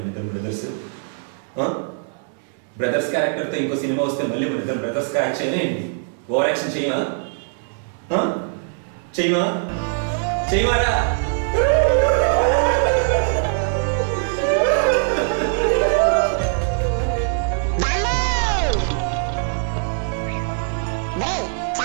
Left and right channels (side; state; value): left; silent; 65 dB below the other